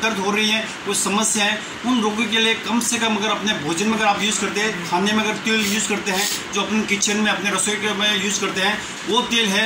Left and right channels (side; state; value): both; identical; correlation 1.00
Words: दर्द हो रही है, कोई समस्या है, उन रोगों के लिए कम से कम अगर अपने भोजन में अगर आप यूज़ करते हैं, खाने में अगर तेल यूज़ करते हैं, जो अपने किचन में अपने रसोई में यूज़ करते हैं, वो तेल